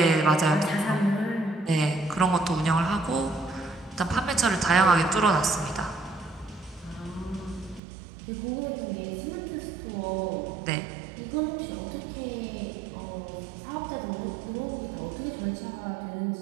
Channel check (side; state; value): left; drops out; at 7.8 s